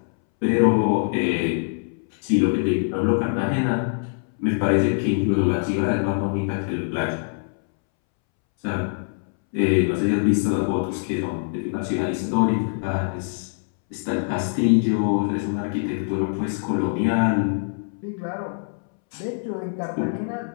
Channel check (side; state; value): right; silent; 63 dB below the other